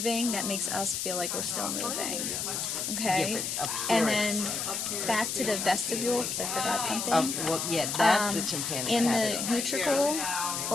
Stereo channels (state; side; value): noise; left; hiss, 2 dB below the sound